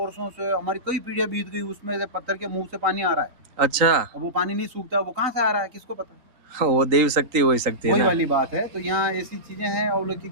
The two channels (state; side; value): late; left; 3.7 ms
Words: से। हमारी कई पीढ़ियां बीत गई, उसमें से पत्थर के मुंह से पानी आ रहा है। अच्छा, अब वो पानी नहीं सूखता, वो कहाँ से आ रहा है किसको पता है? वो देव शक्ति हो सकती है वही ना। वाली बात है। तो यहाँ ऐसी चीजें हैं और लोग की